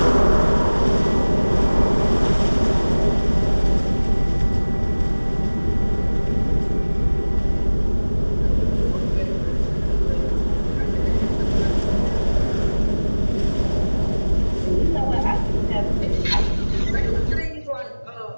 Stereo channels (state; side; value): inverted; both; correlation -1.00